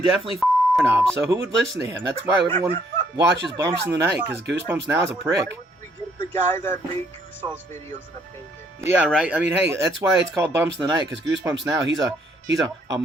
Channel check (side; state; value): both; normal; correlation 0.67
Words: definitely knob. So who would listen to him? That's why everyone watches Bumps in the Night, because Goosebumps now is a prick. Why would we give the guy that made Goosebumps videos an opinion? Yeah, right. I mean, hey, that's why it's called Bumps in the Night, because Goosebumps now he's a